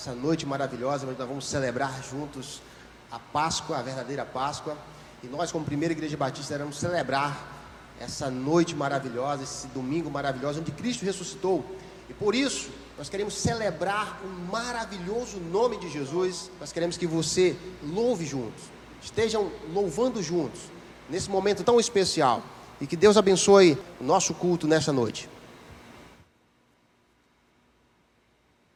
noite maravilhosa, onde nós vamos celebrar juntos a Páscoa, a verdadeira Páscoa. E nós, como Primeira Igreja Batista, iremos celebrar essa noite maravilhosa, esse domingo maravilhoso, onde Cristo ressuscitou. E por isso, nós queremos celebrar o maravilhoso nome de Jesus. Nós queremos que você louve juntos, estejam louvando juntos, nesse momento tão especial. E que Deus abençoe o nosso culto nessa noite.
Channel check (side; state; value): both; identical; correlation 1.00